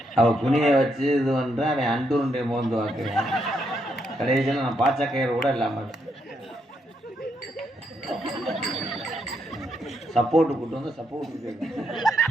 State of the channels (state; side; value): normal; both; correlation 0.78